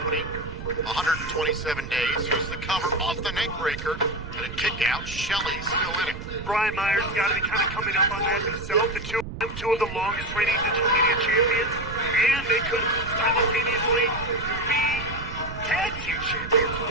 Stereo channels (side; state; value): right; noise; rumble, 10 dB below the sound